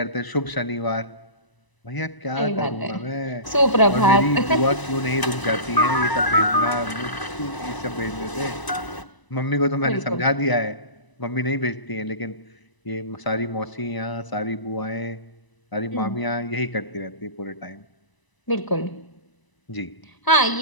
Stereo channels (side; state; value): right; late; 1.0 ms